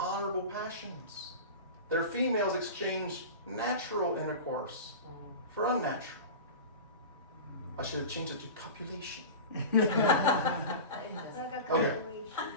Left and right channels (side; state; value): both; inverted; correlation -0.30